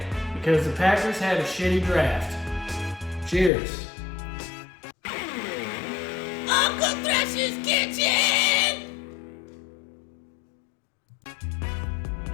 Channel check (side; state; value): right; drops out; at 3.5 s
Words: because the Packers had a shitty draft. Cheers. Uncle Thrasher's kitchen!